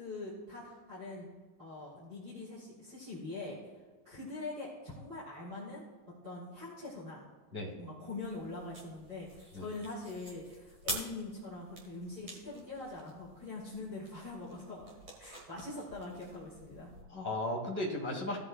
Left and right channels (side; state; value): left; late; 11 ms